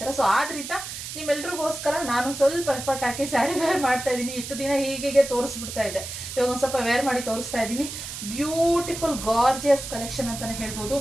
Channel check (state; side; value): noise; right; hiss, 8 dB below the sound